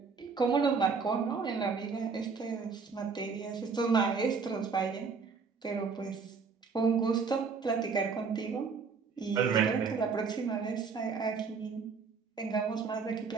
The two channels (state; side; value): quieter; left; 5.2 dB